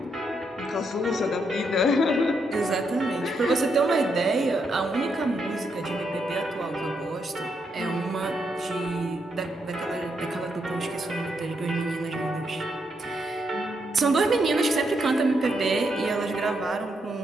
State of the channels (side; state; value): both; normal; correlation 0.79